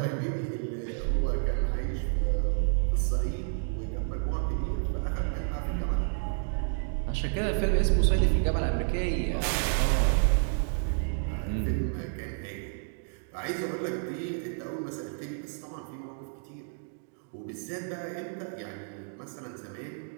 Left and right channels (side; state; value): left; silent; digital silence